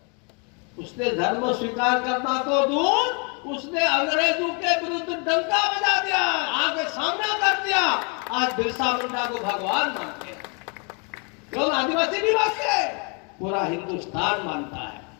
उसने धर्म स्वीकार करना तो दूर, उसने अंग्रेजों के विरुद्ध डंका बजा दिया, आगे सामना कर दिया। आज बिरसा मुंडा को भगवान मानते हैं, क्यों? आदिवासी नहीं मानते, पूरा हिंदुस्तान मानता है।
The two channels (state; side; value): quieter; right; 34.7 dB